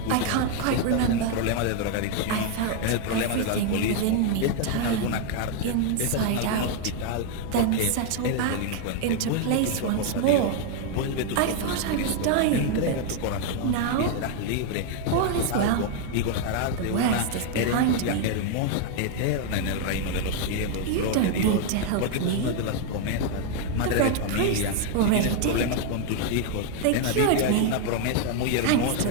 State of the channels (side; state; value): both; different; correlation 0.01